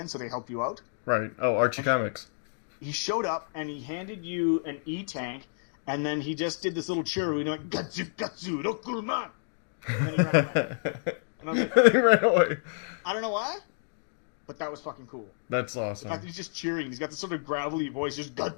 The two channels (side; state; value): right; silent; digital silence